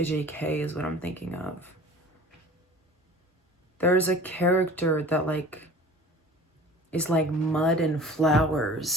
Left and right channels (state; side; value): normal; both; correlation 0.43